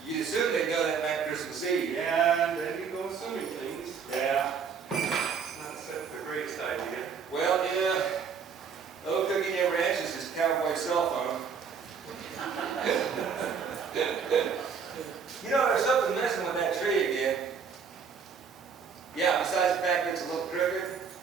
you assume they know that night Christmas Eve. Yeah, and then you go assuming things. Yeah. Not the greatest idea. Well, yeah. Little Cookie never answers his cowboy cell phone. You know,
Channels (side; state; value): left; quieter; 6.3 dB